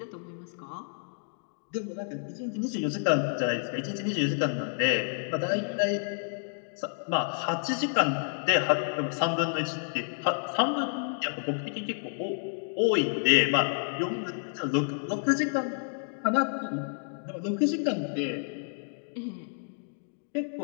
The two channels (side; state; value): right; silent; digital silence